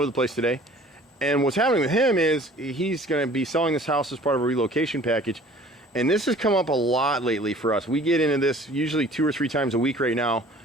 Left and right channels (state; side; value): normal; both; correlation 0.49